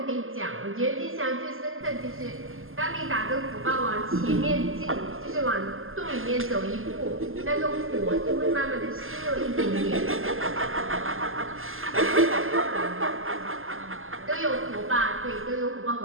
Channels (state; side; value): late; left; 0.60 ms